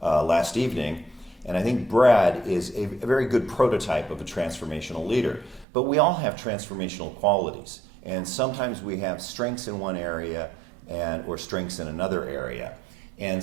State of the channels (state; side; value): drops out; left; at 5.7 s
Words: last evening. And I think Brad is a very good prototype of a transformational leader. But we all have transformational qualities. And sometimes we have strengths in one area or strengths in another area. And